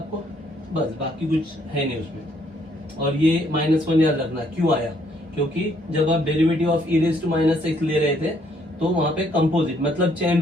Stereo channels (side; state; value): both; normal; correlation 0.68